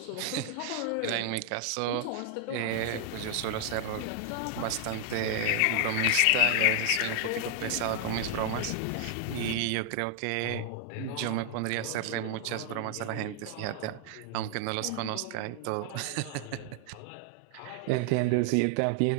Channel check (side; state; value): both; different; correlation 0.00